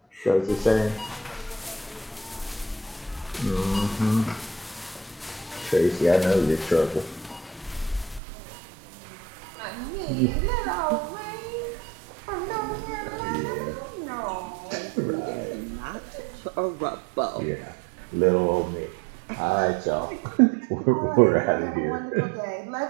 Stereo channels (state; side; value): drops out; left; at 8.2 s